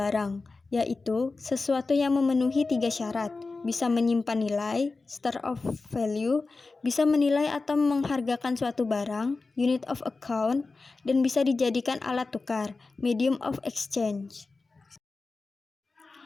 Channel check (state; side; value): quieter; right; 3.8 dB